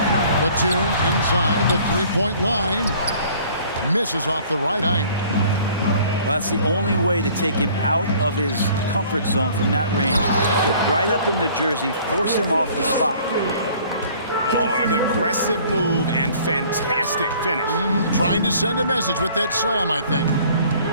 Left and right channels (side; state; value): both; inverted; correlation -0.53